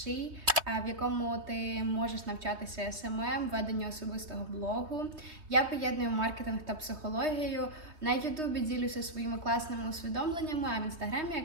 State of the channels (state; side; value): late; left; 3.2 ms